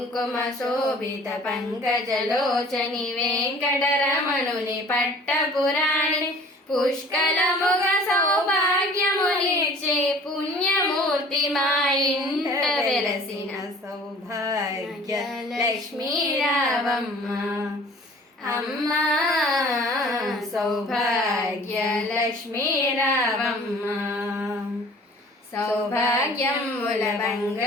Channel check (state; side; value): normal; both; correlation 0.48